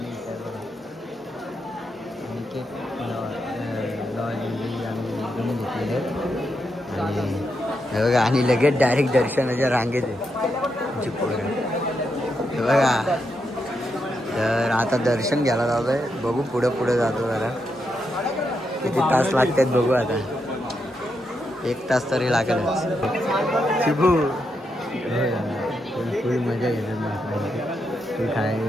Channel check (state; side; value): normal; both; correlation 0.83